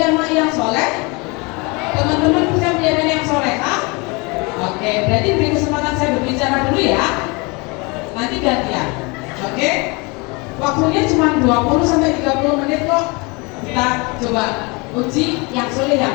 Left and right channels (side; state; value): right; quieter; 28.1 dB